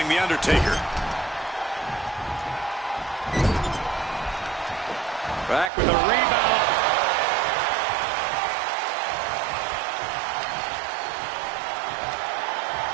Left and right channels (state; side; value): drops out; left; at 5.7 s